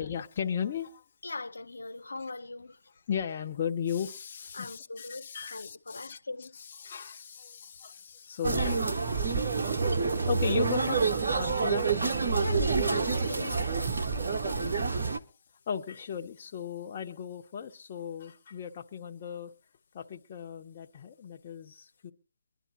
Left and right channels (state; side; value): inverted; both; correlation -0.69